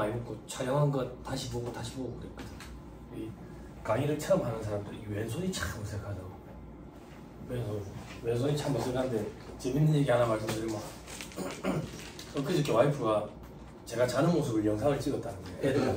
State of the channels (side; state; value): both; identical; correlation 1.00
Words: 먹고 촬영한 거 다시 보고 그랬거든. 이 강의를 처음 하는 사람들이 왼손이 참 어색하다고. 왼손이 참 어색한데 재밌는 얘기 하나 말씀드리면 그저께 와이프가 제가 자는 모습을 영상을 찍었다는 거예요.